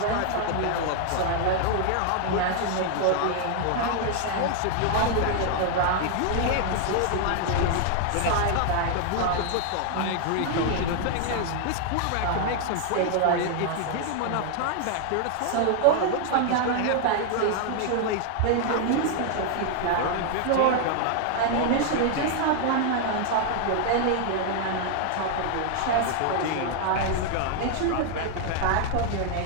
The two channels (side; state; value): both; different; correlation 0.00